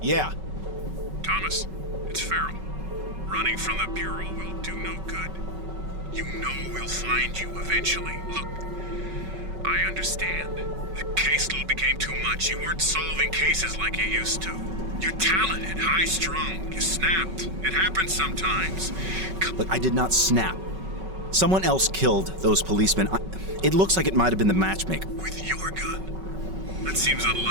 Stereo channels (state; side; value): late; left; 5.3 ms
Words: Yeah. Thomas, it's Farrell. Running from the Bureau will do no good. You know we'll find you eventually. Look, I understand. The caseload became too much. You weren't solving cases like you used to. You're talented, high-strung. You snapped. It happens sometimes. Look, I did not snap. Someone else killed those policemen. It looks like it might have been the matchmaker. With your gun? That seems